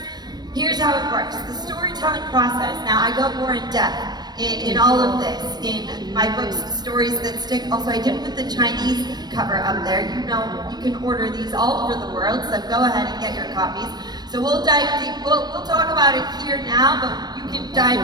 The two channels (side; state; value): left; late; 0.20 ms